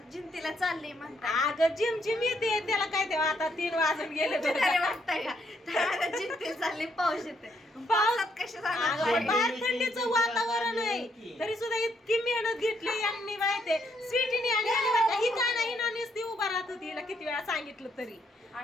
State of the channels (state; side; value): normal; both; correlation 0.73